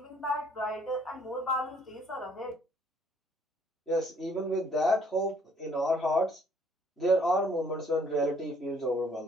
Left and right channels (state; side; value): normal; both; correlation 0.63